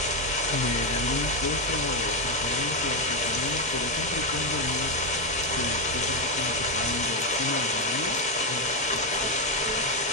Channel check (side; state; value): both; normal; correlation 0.07